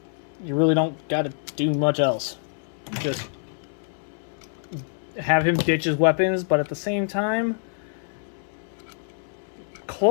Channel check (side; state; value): right; silent; 61 dB below the other